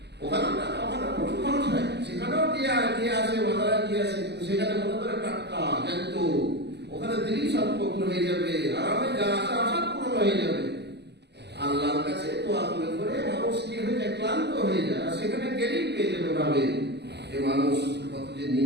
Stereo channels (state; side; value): late; left; 0.49 ms